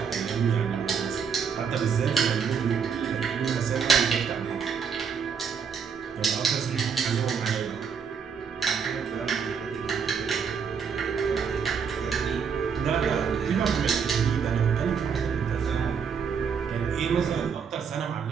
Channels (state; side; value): quieter; left; 6.5 dB